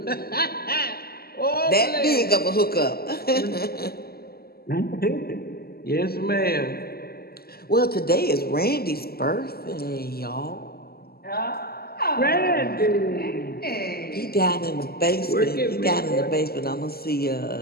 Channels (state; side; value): late; right; 0.45 ms